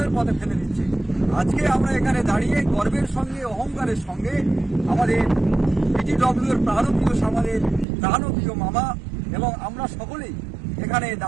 পথে ফেলে দিচ্ছে। আজকে আমরা এখানে দাঁড়িয়ে গর্বের সঙ্গে, অহংকারের সঙ্গে আমাদের পিটিডব্লিউর প্রাণপ্রিয় আমাদের প্রাণপ্রিয় মামা এবং আমরা সকলেই এখানে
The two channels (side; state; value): left; drops out; at 7.9 s